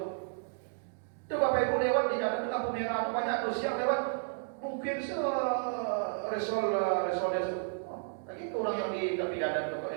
Itu Bapak Ibu lewat di jalan itu lampu merah itu banyak tuh siang lewat. Mungkin resol. Lagi itu orang yang di tepi jalan itu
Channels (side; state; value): left; silent; digital silence